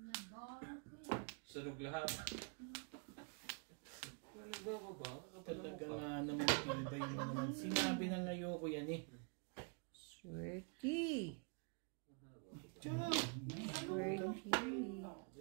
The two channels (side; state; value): left; quieter; 37.3 dB